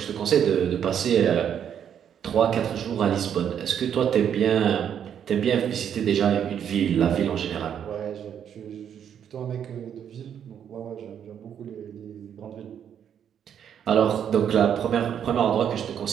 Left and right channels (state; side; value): quieter; left; 8.8 dB